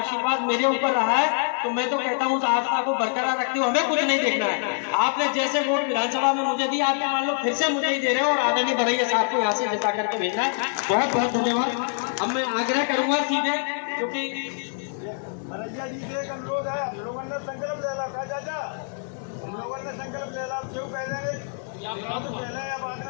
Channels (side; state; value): right; silent; 62 dB below the other